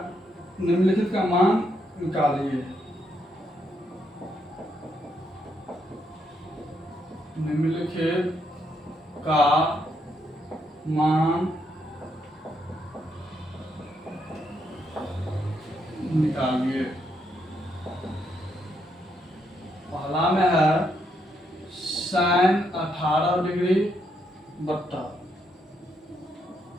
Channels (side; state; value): both; normal; correlation 0.77